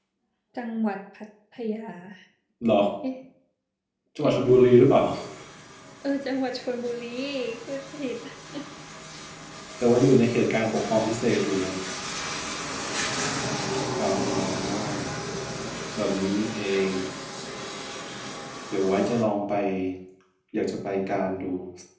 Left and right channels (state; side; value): identical; both; correlation 1.00